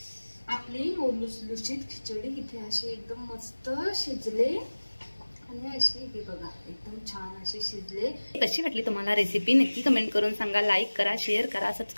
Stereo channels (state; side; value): inverted; both; correlation -1.00